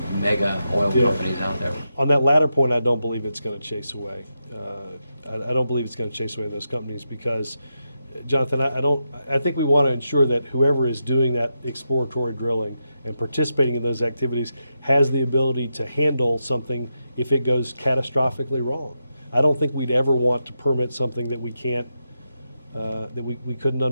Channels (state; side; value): inverted; both; correlation -0.86